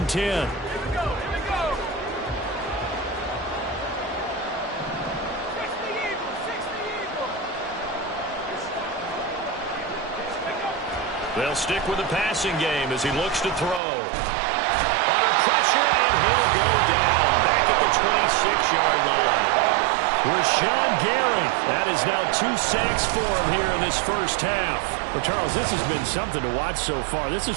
10. They'll stick with the passing game as he looks to throw. Under pressure, and he'll go down. Back at the 26-yard line. Rashawn Gary. That is now 2 sacks for him here in this first half. Well, Charles, this has been something to watch so far. This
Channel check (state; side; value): drops out; left; at 13.8 s